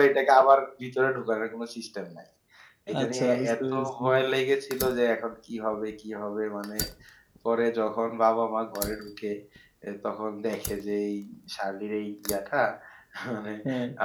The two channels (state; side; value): identical; both; correlation 1.00